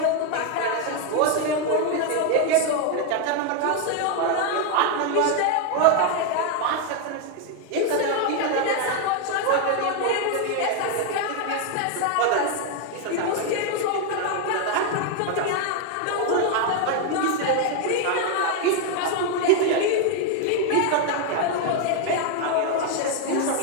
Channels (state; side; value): different; both; correlation 0.01